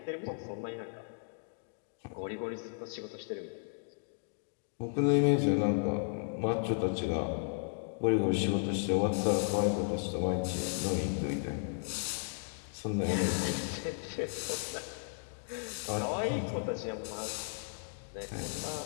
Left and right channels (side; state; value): right; silent; digital silence